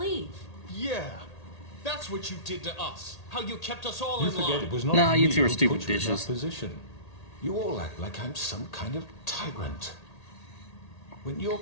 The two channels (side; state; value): right; late; 1.8 ms